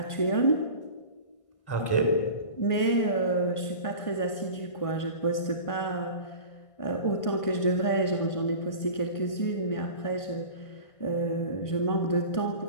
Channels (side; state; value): right; late; 1.5 ms